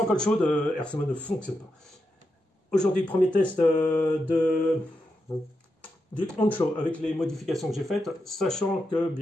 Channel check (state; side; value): normal; both; correlation 0.86